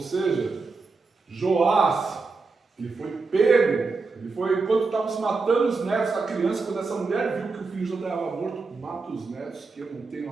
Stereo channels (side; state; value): left; quieter; 4.1 dB